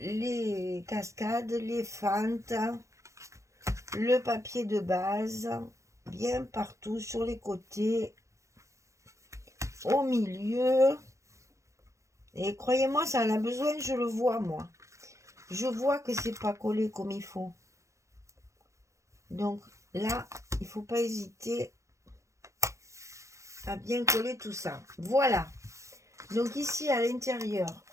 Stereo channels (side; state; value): left; late; 0.15 ms